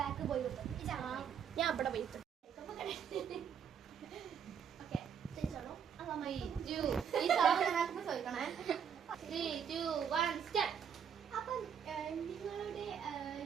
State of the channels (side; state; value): left; quieter; 7.7 dB